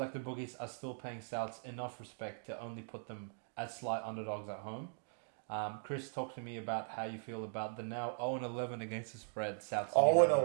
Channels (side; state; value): left; silent; digital silence